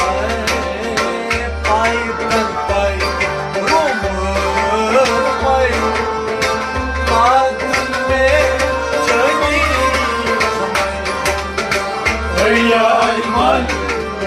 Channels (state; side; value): identical; both; correlation 1.00